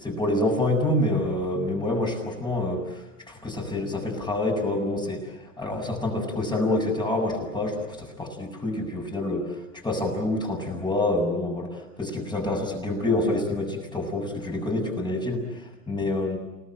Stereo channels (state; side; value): normal; both; correlation 0.41